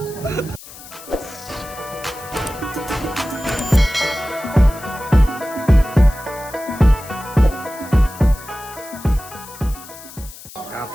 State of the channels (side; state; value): left; noise; hiss, 17 dB below the sound